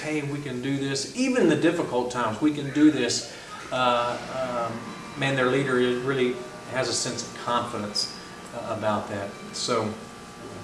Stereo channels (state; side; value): identical; both; correlation 1.00